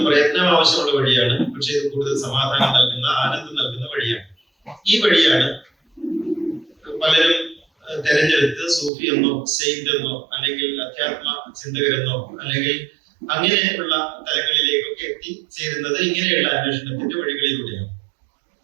പ്രയത്നം ആവശ്യമുള്ള വഴിയാണ്. പക്ഷെ ഇത് കൂടുതൽ സമാധാനം നൽകുന്ന, ആനന്ദം നൽകുന്ന വഴിയാണ്. ഈ വഴിയാണ് പലരും തെരഞ്ഞെടുത്ത് സൂഫി എന്നോ, സെയിന്റ് എന്നോ, അല്ലെങ്കിൽ അധ്യാത്മ ചിന്തകരെന്നോ, അല്ലെങ്കിൽ അങ്ങനെയുള്ള തലങ്ങളിലേക്കൊക്കെ എത്തിച്ചേരുന്നത് ഇങ്ങനെയുള്ള അന്വേഷണത്തിന്റെ വഴികളിലൂടെയാണ്.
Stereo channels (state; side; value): drops out; left; at 8.9 s